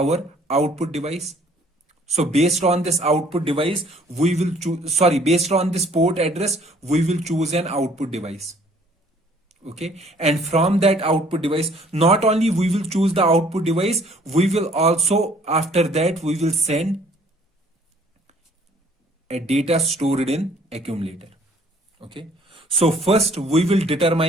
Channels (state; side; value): normal; both; correlation 0.58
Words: output device. So based on this output device, we will choose, based on this port address, we will choose an output device. Okay, and from that output device, not only we will choose the output device, we will also, after that, we will send a data stored in accumulator. Okay, so first we will